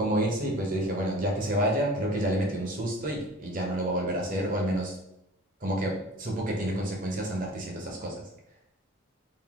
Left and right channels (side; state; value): both; normal; correlation 0.44